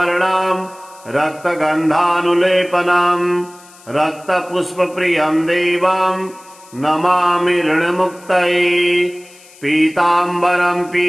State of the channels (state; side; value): noise; left; hiss, 24 dB below the sound